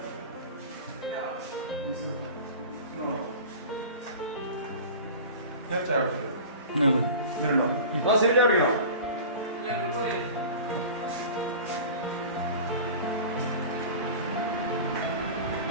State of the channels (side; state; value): both; inverted; correlation -0.36